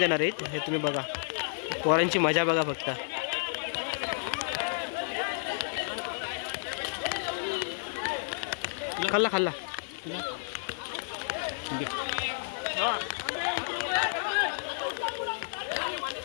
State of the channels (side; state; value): right; silent; digital silence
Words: आहेत, हे तुम्ही बघा. पोरांची मजा बघा फक्त. खाल्ला खाल्ला